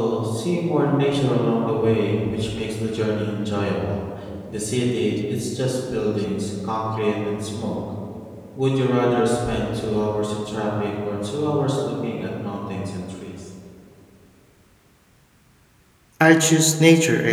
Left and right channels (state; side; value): identical; both; correlation 1.00